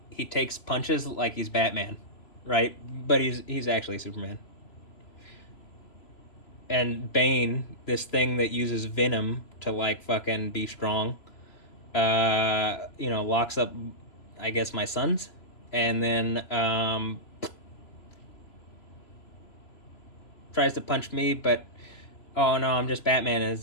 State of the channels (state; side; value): late; right; 3.0 ms